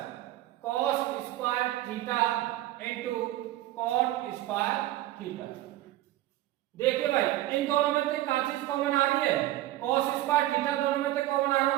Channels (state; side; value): quieter; left; 15.4 dB